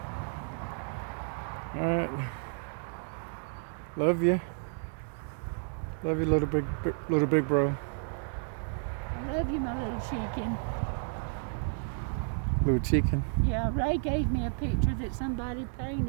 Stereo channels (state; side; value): silent; left; 57 dB below the other